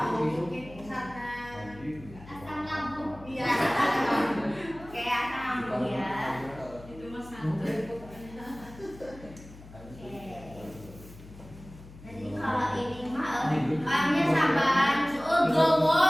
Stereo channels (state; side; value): noise; left; hum, 18 dB below the sound